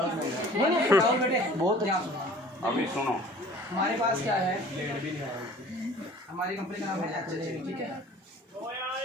नहीं जाओ बेटे, बहुत ध्यान सुनो। अभी सुनो, हमारे पास क्या है, हमारी कंपनी का नाम है HHL, ठीक है।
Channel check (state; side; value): normal; both; correlation 0.48